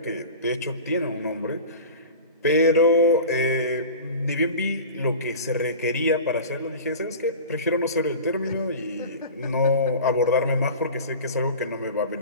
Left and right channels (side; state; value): both; inverted; correlation -0.35